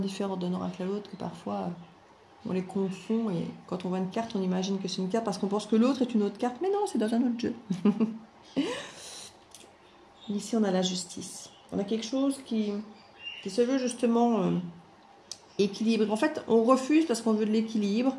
d'un oracle à l'autre que parfois, on les confond. Et quand on voit une carte, on imagine que c'est une carte parce qu'on pense que l'autre est une autre carte. Mais non, c'est dans un autre jeu. Ici, on a la justice. On a quelque chose qui se veut justement équilibré. En fait, on refuse parce qu'on veut de l'équilibre.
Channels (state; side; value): identical; both; correlation 1.00